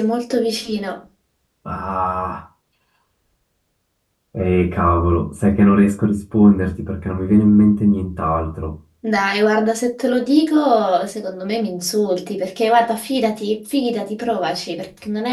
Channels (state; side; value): identical; both; correlation 1.00